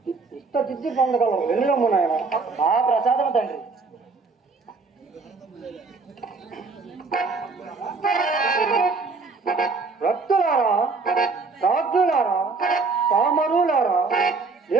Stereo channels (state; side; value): quieter; left; 4.2 dB